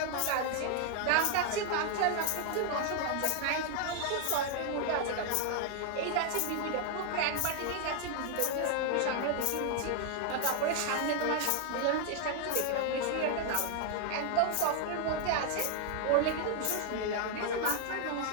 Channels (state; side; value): different; both; correlation 0.00